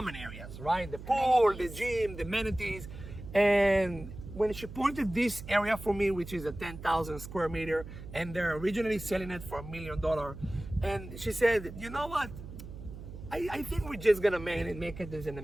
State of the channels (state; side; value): noise; right; hum, 12 dB below the sound